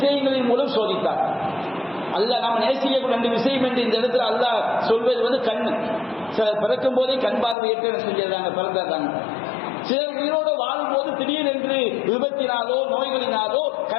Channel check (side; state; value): right; drops out; at 7.6 s